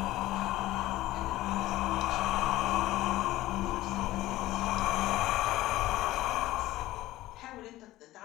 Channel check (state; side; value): quieter; right; 16.5 dB